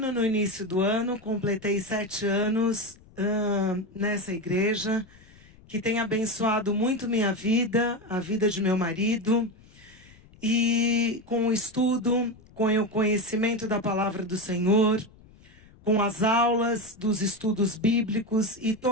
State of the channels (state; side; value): noise; left; rumble, 25 dB below the sound